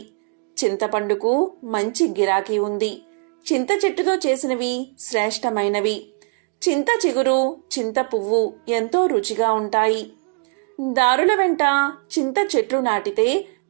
చింతపండుకు మంచి గిరాకీ ఉంది. చింత చెట్టుతో చేసినవి శ్రేష్టమైనవి. చింత చిగురు, చింత పువ్వు ఎంతో రుచిగా ఉంటాయి. దారుల వెంట చింత చెట్లు నాటితే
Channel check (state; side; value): quieter; left; 37.1 dB